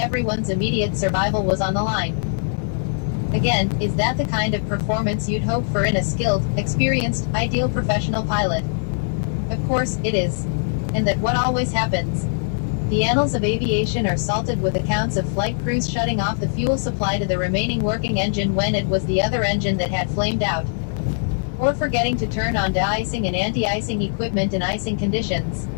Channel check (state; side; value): silent; right; 64 dB below the other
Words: immediate survival was on the line. Again, is that the kind of performance you'd hope for in a skilled, experienced, ideal professional pilot? Of course, it is. And that what always happens? The annals of aviation are salted with accounts of flight crews shutting off the fuel supply to the remaining working engine when it was the other engine that had flamed out. Or forgetting to turn on de-icing and anti-icing equipment in icing conditions.